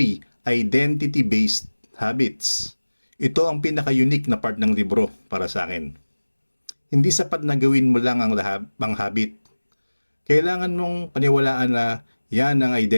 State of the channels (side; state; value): both; inverted; correlation -1.00